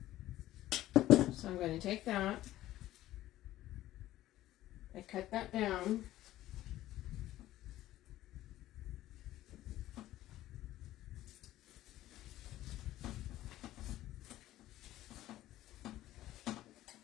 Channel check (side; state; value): right; quieter; 14.7 dB